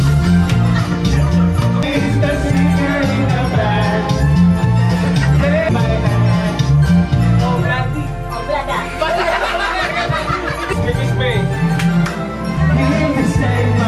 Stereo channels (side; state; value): both; identical; correlation 1.00